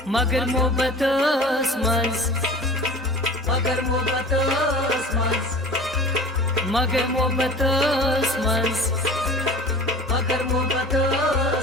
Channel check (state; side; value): normal; both; correlation 0.39